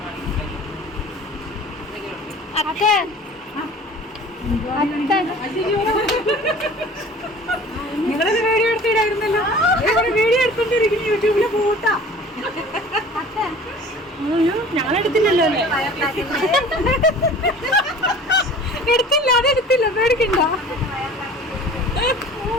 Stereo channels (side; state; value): both; normal; correlation 0.44